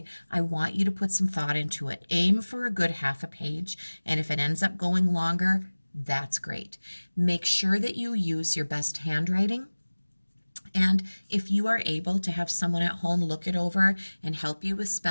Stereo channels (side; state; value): both; inverted; correlation -1.00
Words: I want you to put some thought into it. Aim for a good half a page, and if it ends up going longer, that's great. Make sure that you use your best handwriting. And if you are able to have someone at home look it over and help you with